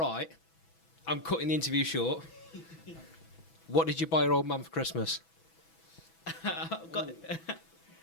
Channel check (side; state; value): right; late; 6.1 ms